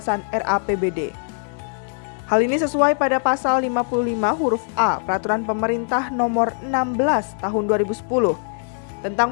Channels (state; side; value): silent; right; 64 dB below the other